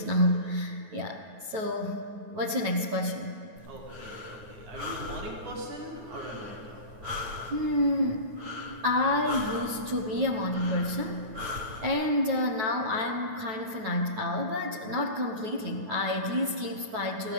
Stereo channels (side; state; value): left; late; 9.3 ms